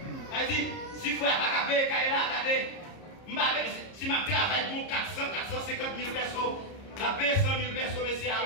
Il dit, si vous n'avez pas payé, regardez, si je travaille pour 450 000 personnes, la paye 100 000 personnes, mais c'est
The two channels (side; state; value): right; late; 30 ms